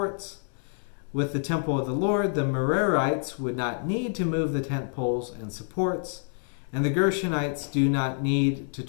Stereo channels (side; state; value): right; silent; 60 dB below the other